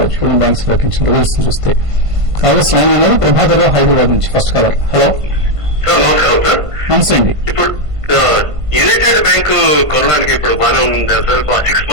ఇటువంటి బ్యాంక్స్ ప్రకటించిన రిజల్ట్స్ చూస్తే. కాంగ్రెస్ లైన్ అనేది ప్రభాకర్ హైదరాబాద్ నుంచి ఫస్ట్ కాలర్. హలో నమస్తే అండి. ఇప్పుడు యునైటెడ్ బ్యాంక్ కొనడానికి ఇప్పుడు బాగానే ఉంది సార్. 6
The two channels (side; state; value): left; late; 1.5 ms